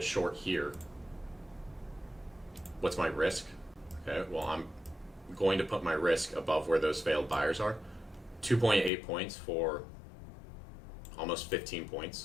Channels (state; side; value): drops out; right; at 8.9 s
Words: short here, what's my risk? Okay, well, I'm going to put my risk above where those failed buyers are. 2.8 points for almost 15